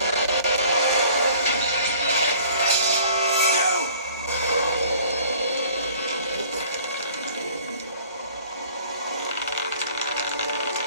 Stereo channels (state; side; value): inverted; both; correlation -0.52